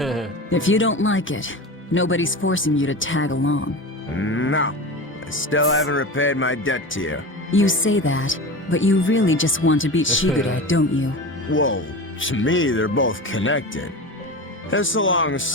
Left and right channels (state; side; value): normal; both; correlation 0.28